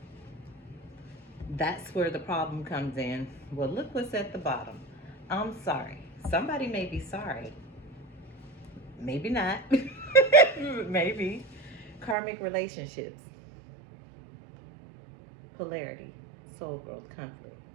That's where the problem comes in. Well, look what's at the bottom. I'm sorry. Somebody may be sorry. Maybe not. Maybe. Karmic relationships. Polarity. Soul growth, conflict.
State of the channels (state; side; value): drops out; left; at 12.2 s